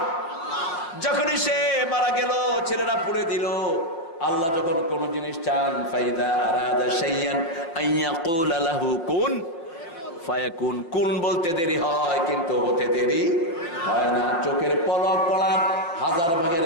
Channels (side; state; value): right; late; 5.8 ms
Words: যখনই সে মারা গেল, ছেলেরা পুড়ে দিল। আল্লাহ যখন কোন জিনিস চান, ফাইদা আরাদা শাইয়ান আইয়াকুলা লাহু কুন ফায়াকুন। কুন বলতে দেরি হয়, কিন্তু হতে দেরি হয় না। চোখের পলক পড়ার 1000 ভাগের